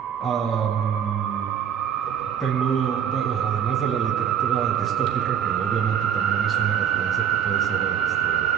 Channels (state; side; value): quieter; left; 8.6 dB